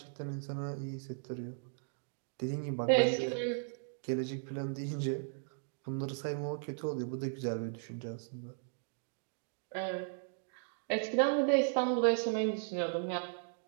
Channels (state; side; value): silent; left; digital silence